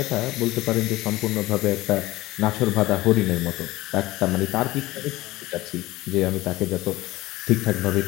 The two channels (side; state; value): right; quieter; 18.2 dB